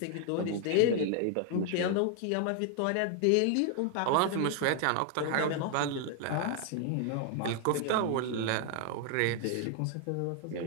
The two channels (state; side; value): different; both; correlation 0.00